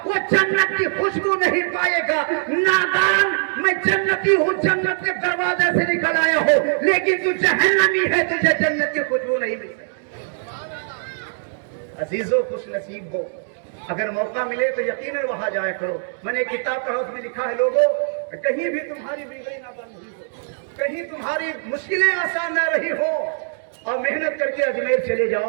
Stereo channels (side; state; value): left; silent; digital silence